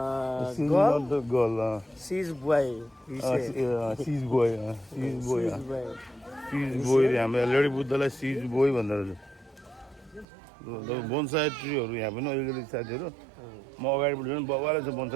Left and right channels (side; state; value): left; drops out; at 10.2 s